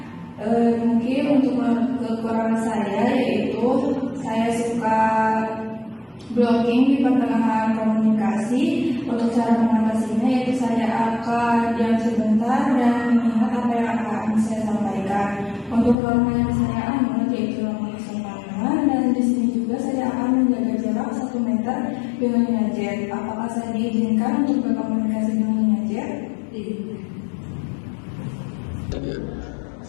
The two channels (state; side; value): drops out; right; at 16.0 s